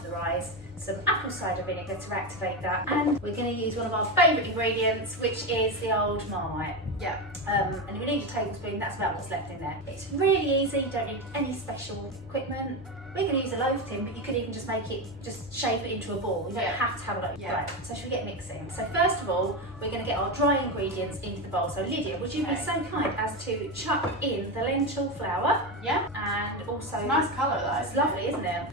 the rise, some apple cider vinegar to activate that, and we're going to use one of our favourite ingredients, which is the old Marmite. Yeah. And we need a tablespoon, that's about what's left in there. It's really easy, you don't need any special equipment. We're going to use a loaf tin, but you could even just make it, just shape it into a ball. You don't have to have a loaf. Yeah. Right, so should we get mixing? So first of all, we're going to get our dry ingredients into the bowl. So Lydia, would you be so kind as to chuck in the lentil flour? Yeah. And also... It's a nice colour though. It's lovely, isn't it?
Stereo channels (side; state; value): both; normal; correlation 0.15